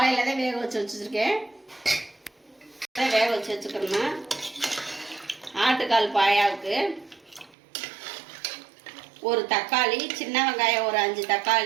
தான் வேக வச்சிருக்கேன். வேக வச்சுக்கணும். ஆட்டுக்கால் பாயாவுக்கு ஒரு தக்காளி, சின்ன வெங்காயம் ஒரு 5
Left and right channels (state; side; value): drops out; left; at 7.6 s